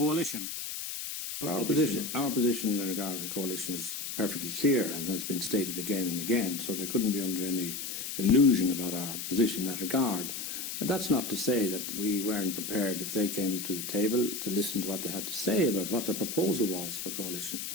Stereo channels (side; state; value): left; noise; hiss, 6 dB below the sound